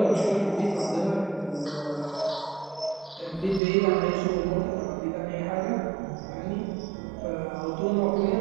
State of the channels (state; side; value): drops out; left; at 3.6 s